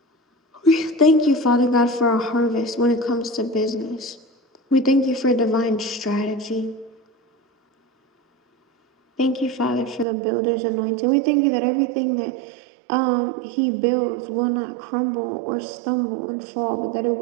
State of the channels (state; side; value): drops out; left; at 10.1 s